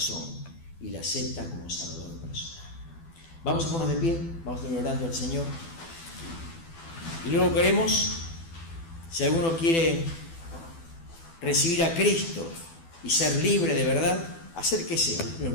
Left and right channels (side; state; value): right; late; 12 ms